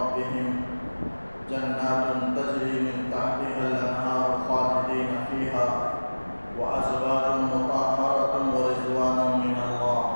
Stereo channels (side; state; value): both; inverted; correlation -1.00